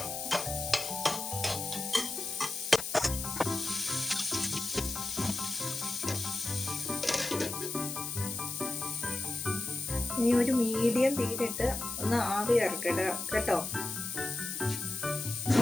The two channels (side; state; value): left; noise; hiss, 5 dB below the sound